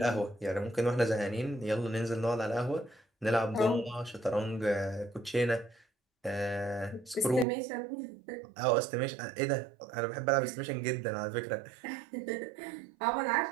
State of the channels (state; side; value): drops out; left; at 7.5 s